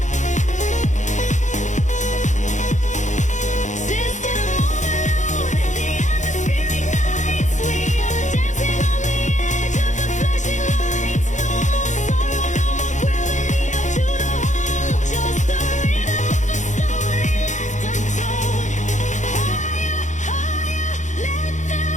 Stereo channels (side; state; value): right; late; 0.35 ms